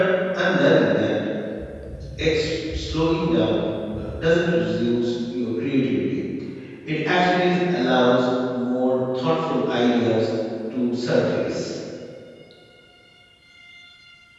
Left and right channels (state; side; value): identical; both; correlation 1.00